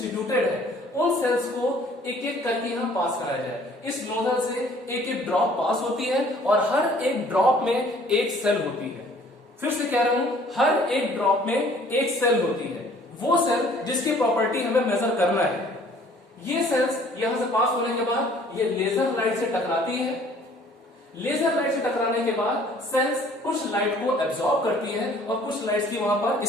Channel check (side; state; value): both; normal; correlation 0.55